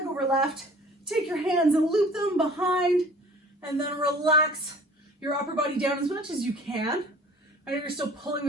over left. Take your hands and loop them behind, and then relax your upper body down as much as you can. I know you're still pulling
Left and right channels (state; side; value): normal; both; correlation 0.48